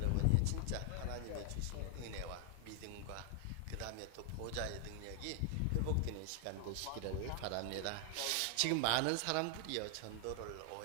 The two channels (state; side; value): different; both; correlation 0.00